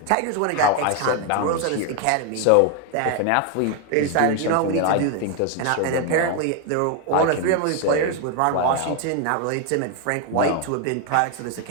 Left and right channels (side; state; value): both; different; correlation 0.01